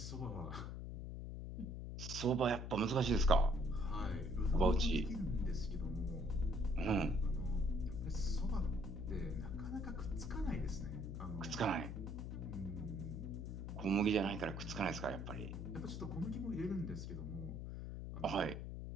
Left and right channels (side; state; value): left; noise; hum, 6 dB below the sound